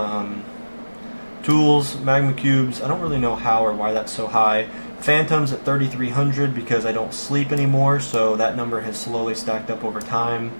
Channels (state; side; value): inverted; both; correlation -1.00